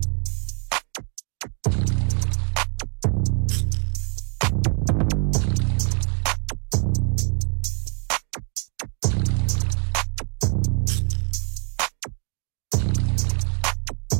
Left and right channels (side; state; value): left; quieter; 39.7 dB